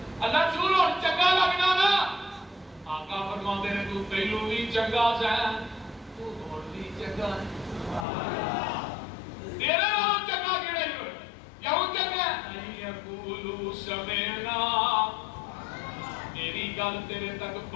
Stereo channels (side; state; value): right; drops out; at 8.1 s